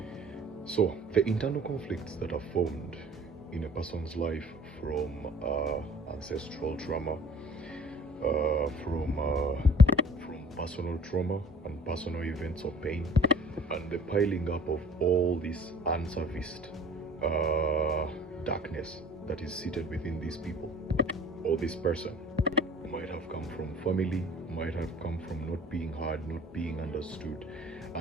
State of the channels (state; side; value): normal; both; correlation 0.49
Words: So, the internal conflicts that are formed in a person's life from ancestral trauma, from personal trauma and personal events of pain, and the piling up of all this unserviced darkness that is seated within these people or this person. Might have come from family, might have come from not being heard, not being understood,